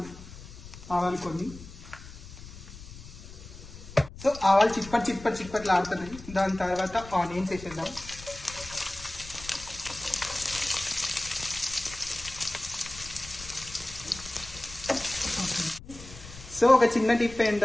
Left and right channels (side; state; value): left; noise; rumble, 15 dB below the sound